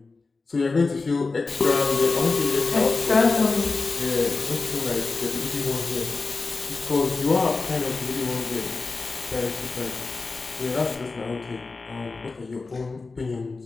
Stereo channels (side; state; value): right; quieter; 4.0 dB